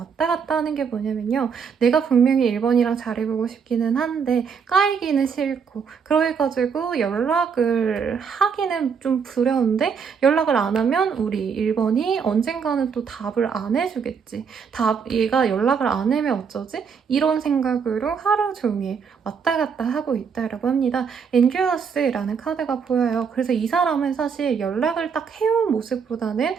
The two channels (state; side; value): quieter; left; 6.3 dB